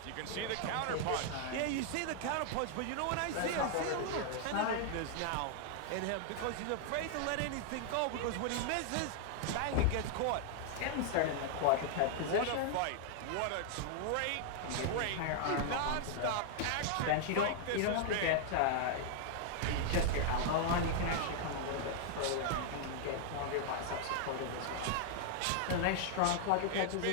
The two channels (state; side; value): different; both; correlation 0.00